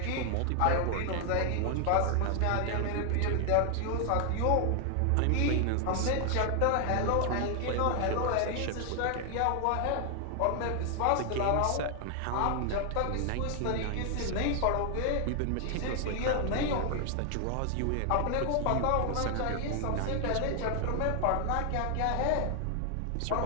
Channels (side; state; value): both; different; correlation 0.00